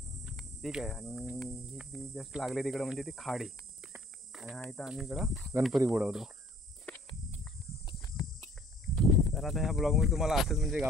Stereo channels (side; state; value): both; normal; correlation 0.55